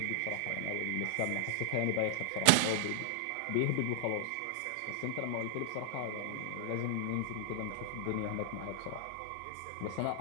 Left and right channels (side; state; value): both; different; correlation 0.00